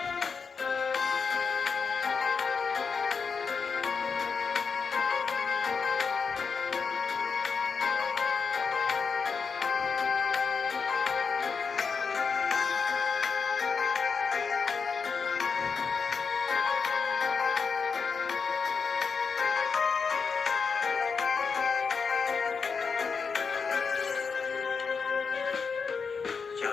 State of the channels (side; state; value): right; quieter; 5.5 dB